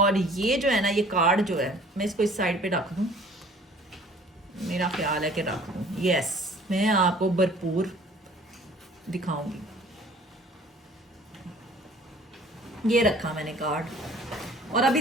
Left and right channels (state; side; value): normal; both; correlation 0.52